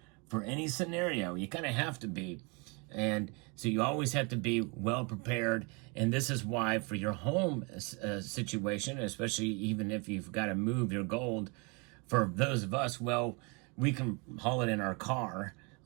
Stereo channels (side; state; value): left; quieter; 31.2 dB